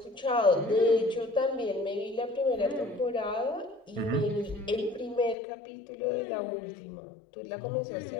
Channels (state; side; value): drops out; right; at 5.4 s